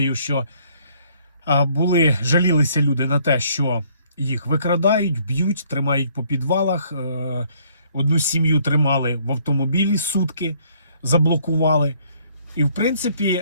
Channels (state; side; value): inverted; both; correlation -0.63